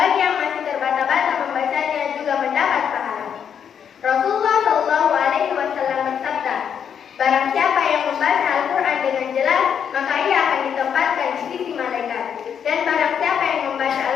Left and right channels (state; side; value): quieter; right; 7.9 dB